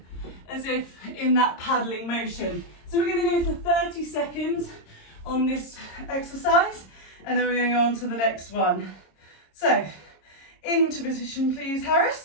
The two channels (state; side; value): late; right; 26 ms